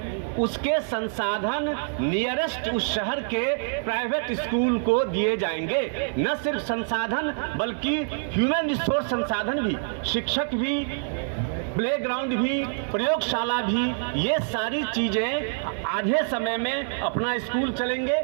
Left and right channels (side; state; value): left; silent; digital silence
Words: उसके संसाधन नियरेस्ट उस शहर के प्राइवेट स्कूल को दिए जाएंगे। न सिर्फ संसाधन बल्कि ह्यूमन रिसोर्स संसाधन भी, शिक्षक भी, प्लेग्राउंड भी, प्रयोगशाला भी, ये सारी चीजें आधे समय में अपना स्कूल चलेंगे